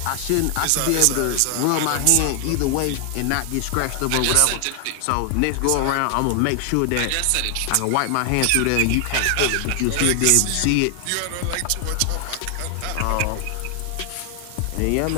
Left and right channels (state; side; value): different; both; correlation 0.00